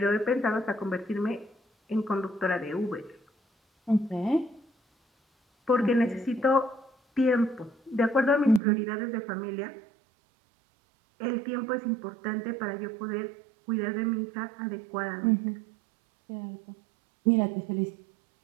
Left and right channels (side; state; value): left; drops out; at 8.6 s